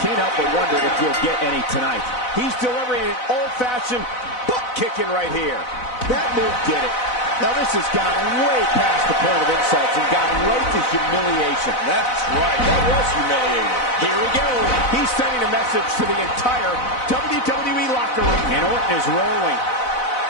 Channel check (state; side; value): late; right; 4.0 ms